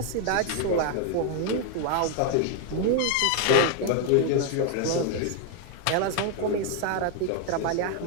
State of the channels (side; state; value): both; different; correlation 0.00